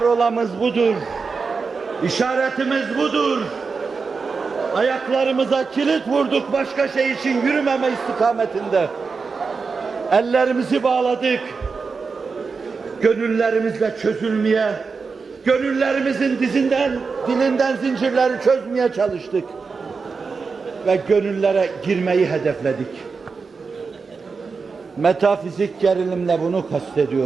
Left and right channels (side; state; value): left; quieter; 4.8 dB